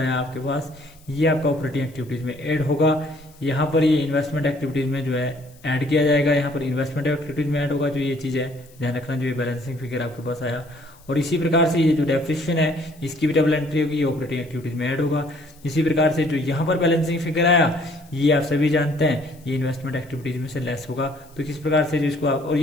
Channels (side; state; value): left; noise; hiss, 28 dB below the sound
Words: आपके पास, ये आपका ऑपरेटिंग एक्टिविटीज में ऐड होगा। यहाँ पर ये इन्वेस्टमेंट एक्टिविटीज में जो है ऐड किया जाएगा, यहाँ पर इन्वेस्टमेंट एक्टिविटीज में ऐड होगा। जो ये चीज़ है ध्यान रखना, जो ये बैलेंसिंग फिगर आपके पास आया, और इसी प्रकार से ये जो डेप्रिसिएशन है इसकी भी डबल एंट्री होगी, ये ऑपरेटिंग एक्टिविटीज में ऐड होगा। इसी प्रकार से जो यहाँ पर बैलेंसिंग फिगर आया ये आप सभी जानते हैं ये इन्वेस्टमेंट एक्टिविटीज में से लेस होगा। तो किस प्रकार से जो इसको आप, और